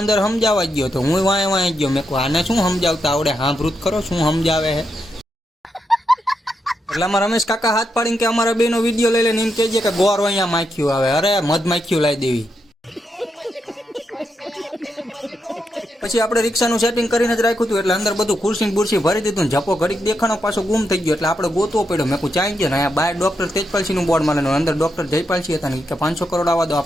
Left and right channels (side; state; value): both; normal; correlation 0.83